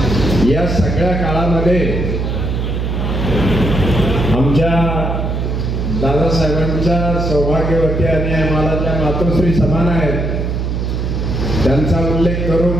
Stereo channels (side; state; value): right; noise; hum, 1 dB below the sound